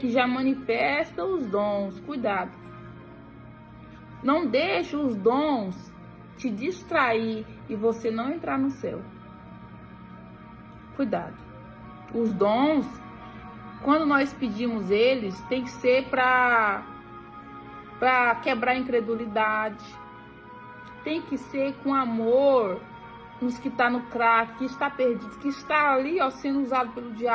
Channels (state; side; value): identical; both; correlation 1.00